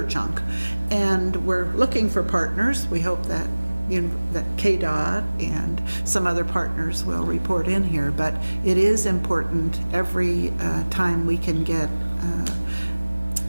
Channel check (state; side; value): inverted; both; correlation -1.00